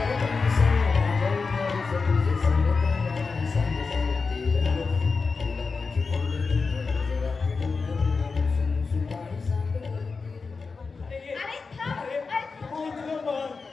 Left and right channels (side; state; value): right; quieter; 4.6 dB